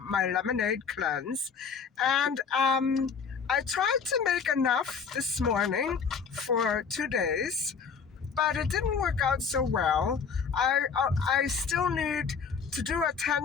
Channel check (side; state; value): right; quieter; 6.0 dB